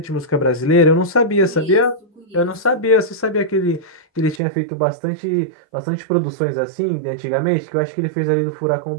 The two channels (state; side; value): drops out; left; at 4.4 s